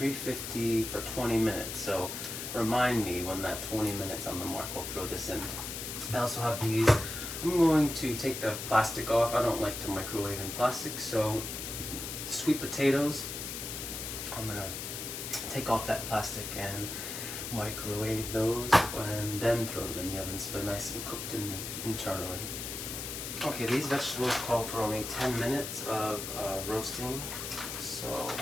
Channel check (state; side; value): noise; left; hiss, 6 dB below the sound